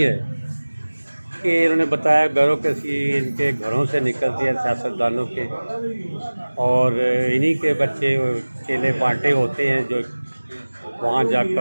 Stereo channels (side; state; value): both; inverted; correlation -1.00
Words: कि इन्होंने बताया ब्यूरोक्रेसी इनके घरों से निकलती है, सियासतदानों के, और इन्हीं के बच्चे केले बांटे होते हैं जो वहाँ